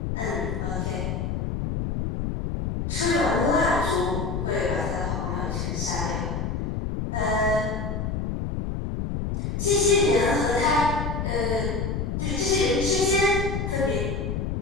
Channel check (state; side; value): noise; left; rumble, 2 dB below the sound